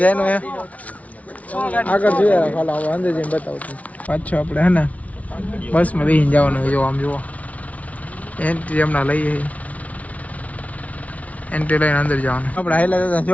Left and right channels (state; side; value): late; right; 0.068 ms